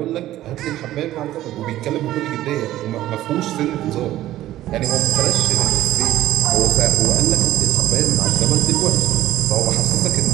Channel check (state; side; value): quieter; left; 14.3 dB